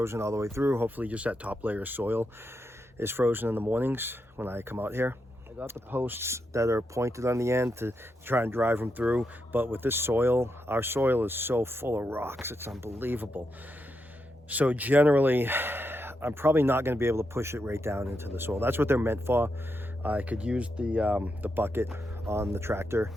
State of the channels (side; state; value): both; normal; correlation 0.84